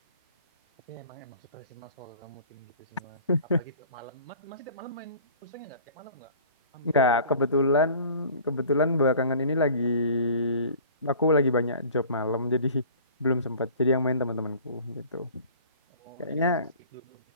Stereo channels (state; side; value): inverted; both; correlation -0.46